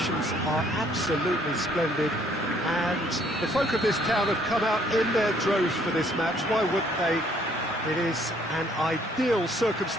are absolutely splendid and the folk of this town have come out in their droves for this match. Why wouldn't they? It is an ideal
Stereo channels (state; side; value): normal; both; correlation 0.64